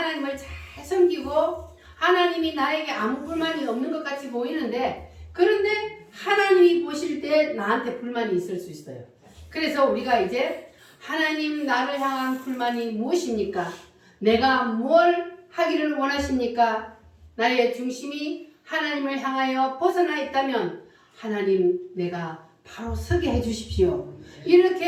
잘 섬기고 하나님이 나에게 아무 불만이 없는 것 같이 보이는데 그런데 하나님이 보실 때 나한테 불만이 있을 수 있어요. 그래서 우리가 이제 하나님 나를 향한 불만이 무엇입니까? 내가 뭘 하기를 원하십니까? 나의 중심이 하나님을 향하여 벗어나 있다면 하나님 내가 바로 서게 해주십시오.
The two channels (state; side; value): identical; both; correlation 1.00